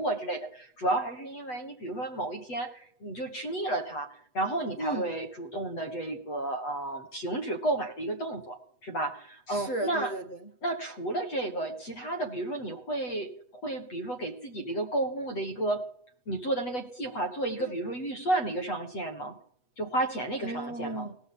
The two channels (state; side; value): late; right; 8.1 ms